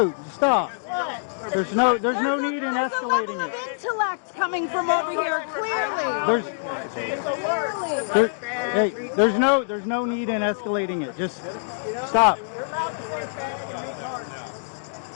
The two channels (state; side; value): silent; right; digital silence